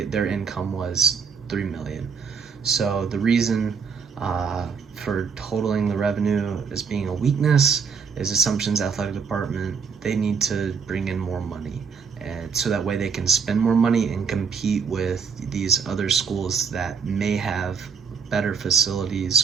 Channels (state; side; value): quieter; left; 5.9 dB